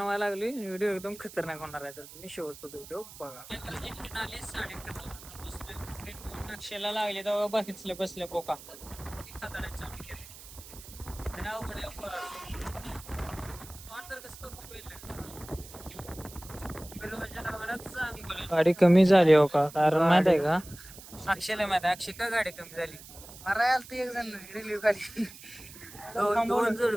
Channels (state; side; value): noise; right; hiss, 17 dB below the sound